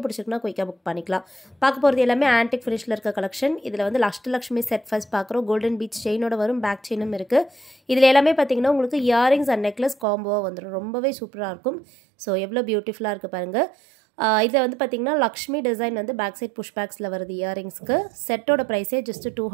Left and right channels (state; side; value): drops out; left; at 10.1 s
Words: பிடிச்சிருக்குனா குயிக்கா புக் பண்ணிக்கலாம். பார்க்க போறது எல்லாமே ஆன்டிக் ஃபினிஷ்ல இருக்க கலெக்ஷன். இதுல வந்து அஷ்டலக்ஷ்மி செட் ஃபர்ஸ்ட் பார்க்கறோம். கோல்டன் பீச் செயினோட வரும், பேக் செயினும் இருக்கு. இதுல எல்லாமே பாத்தீங்கன்னா உங்களுக்கு இயரிங்ஸ் அண்ட் நெக்லஸ் காம்போவா வந்துரும். ரொம்பவே சூப்பரா இருக்கும். சோ எவ்வளவு பியூட்டிஃபுல்லா இருக்கு பாருங்க. இதில் வந்து பார்த்தீங்கன்னா லக்ஷ்மி டிசைன் வந்து பேக் சைட் புஷ் பேக்ஸில் வருது. இயரிங்ஸ்க்கு செட்டோட ப்ரைஸே ஜஸ்ட்